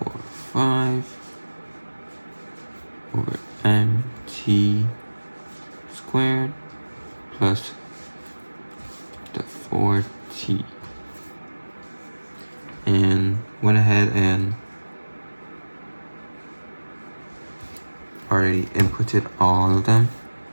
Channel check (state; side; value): inverted; both; correlation -1.00